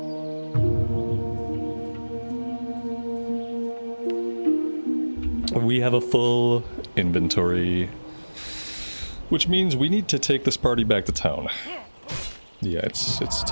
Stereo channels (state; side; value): inverted; both; correlation -1.00